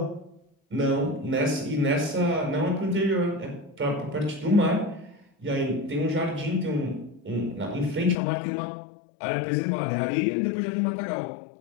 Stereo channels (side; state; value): right; drops out; at 8.2 s